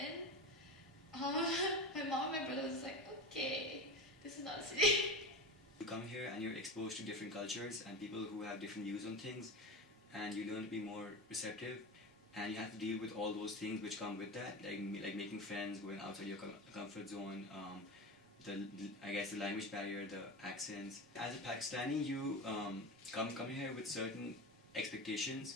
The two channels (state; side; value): normal; both; correlation 0.25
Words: my mom and my brother was like, okay, this is not a city. You come here and you're exposed to different cultures and people who have different views on things, and you learn to be more receptive, and you have to deal with all those things which come with that, like making friends, going outside your comfort zone, I guess the language barrier, the accents. As a Pakistani, you come here with certain